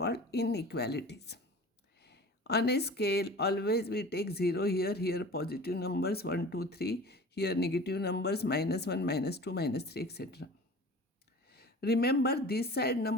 inequalities. On a scale, always we take 0 here positive numbers 1, 2, 3, here negative numbers -1, -2, -3, etc. Remember, this side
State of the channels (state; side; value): normal; both; correlation 0.40